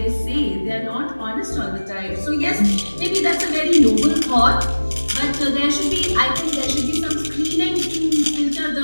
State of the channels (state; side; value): inverted; both; correlation -1.00